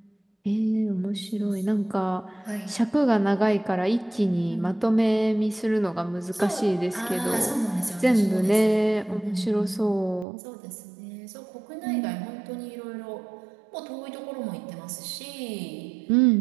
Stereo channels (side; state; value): left; drops out; at 10.2 s